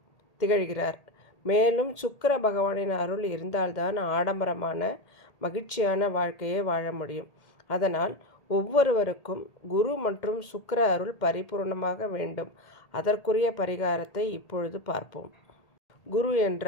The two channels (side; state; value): right; late; 1.8 ms